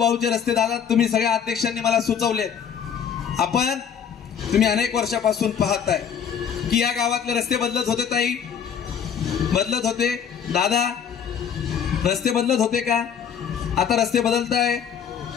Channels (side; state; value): right; quieter; 7.8 dB